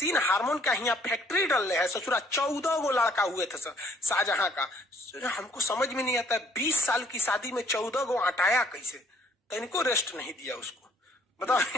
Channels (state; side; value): normal; both; correlation 0.62